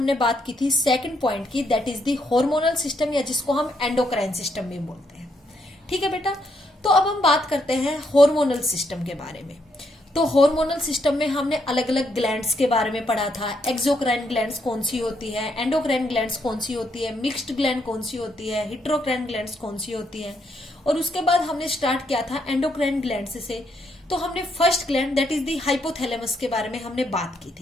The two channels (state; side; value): normal; both; correlation 0.76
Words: बात की थी सेकंड पॉइंट की, that is the hormonal system, या जिसको हम एंडोक्राइन सिस्टम भी बोलते हैं। ठीक है बेटा, तो अब हम बात करते हैं हार्मोनल सिस्टम के बारे में। तो हार्मोनल सिस्टम में हमने अलग अलग ग्लैंड्स के बारे में पढ़ा था। एक्सोक्राइन ग्लैंड्स कौन सी होती है, एंडोक्राइन ग्लैंड्स कौन सी होती है, मिक्स्ड ग्लैंड कौन सी होती है, हेटेरोक्राइन ग्लैंड्स कौन सी होती है। और उसके बाद हमने स्टार्ट किया था एंडोक्राइन ग्लैंड्स से। तो हमने first gland that is the hypothalamus के बारे में हमने बात की